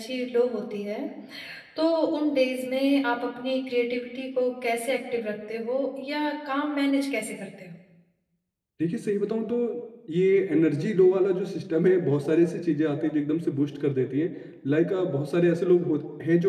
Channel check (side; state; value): both; identical; correlation 1.00